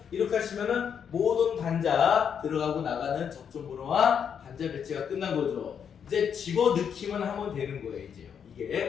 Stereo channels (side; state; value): right; quieter; 7.6 dB